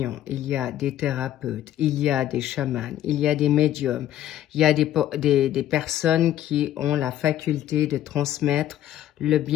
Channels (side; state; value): right; quieter; 12.3 dB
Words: il y a des thérapeutes, il y a des chamans, il y a des médiums, il y a des personnes qui ont la faculté de transmettre le